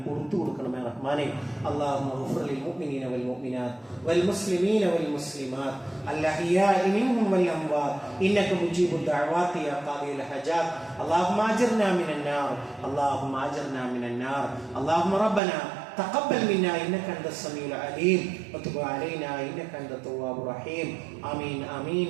പുറത്തു കൊടുക്കണമേ റഹ്മാനെ. അല്ലാഹുമ്മ ഗ്ഫിർ ലിൽ മുഅ്മിനീന വൽ മുഅ്മിനാത്ത് വൽ മുസ്ലിമീന വൽ മുസ്ലിമാത്ത് അൽഅഹ്യാഇ മിൻഹും വൽ അംവാത്ത് ഇന്നക മുജീബുദ് ദഅവാതി യാ ഖാദിയൽ ഹജാത്ത്. അല്ലാഹുമ്മ അജിർനാ മിനൻ നാർ, അല്ലാഹുമ്മ അജിർനാ മിനൻ നാർ. اللهم ربنا تقبل منا إنك أنت السميع العليم وتب علينا إنك أنت التواب الرحيم. آمين آمين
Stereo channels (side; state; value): left; drops out; at 15.4 s